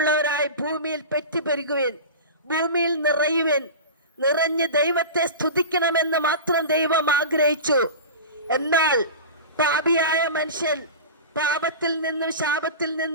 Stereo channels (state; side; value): inverted; both; correlation -0.31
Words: ഭൂമിയിൽ പെറ്റുപെരുകുവിൻ, ഭൂമിയിൽ നിറയുവിൻ, നിറഞ്ഞ് ദൈവത്തെ സ്തുതിക്കണമെന്ന് മാത്രം ദൈവം ആഗ്രഹിച്ചു. എന്നാൽ പാപിയായ മനുഷ്യൻ പാപത്തിൽ നിന്നും ശാപത്തിൽ